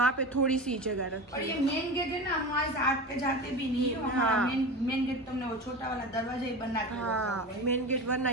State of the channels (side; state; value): both; normal; correlation 0.28